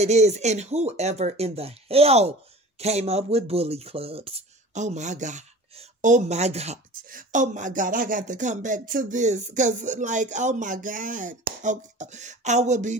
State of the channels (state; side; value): normal; both; correlation 0.40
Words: is. And whoever in the hell came up with bully clubs. Oh my God. Oh my God. Oh my God. I got to come back to this because oh my God. Okay. I will be